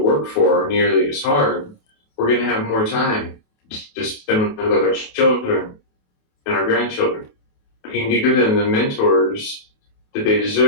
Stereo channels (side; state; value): right; late; 28 ms